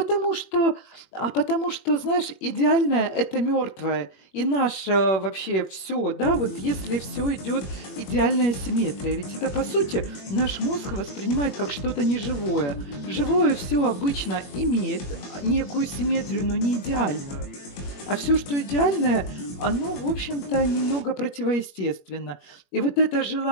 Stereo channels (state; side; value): late; right; 21 ms